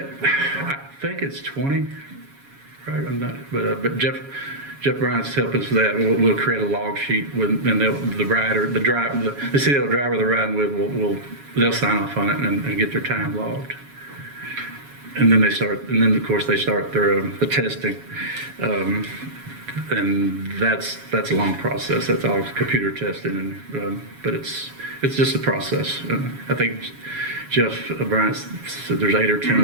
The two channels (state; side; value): late; left; 7.2 ms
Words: think it's 20, right? I'm not, but Jeff Bryant's helping us with that. We'll create a log sheet with, and the CDL driver they're riding with they'll sign off on it and get their time logged. And then of course they start the testing, and that's a long process. That's all computer testing, but it's just a process. I think Jeff Bryant said there's 8 or 10